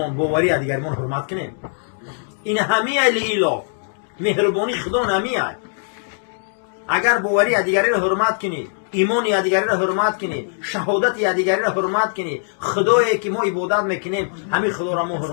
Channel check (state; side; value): silent; right; 65 dB below the other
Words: باوری دیگرمون حرمت کنیم. این همه ایلاف مهربانی خدا نمیاد. اگر باوری دیگری را حرمت کنی، ایمان دیگری را حرمت کنی، شهادت دیگری را حرمت کنی، خدایی که ما عبادت میکنیم همین خدا را ما